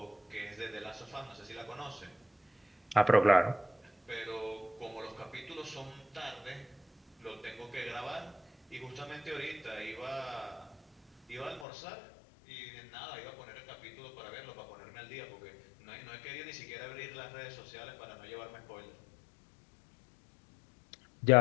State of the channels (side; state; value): right; drops out; at 11.7 s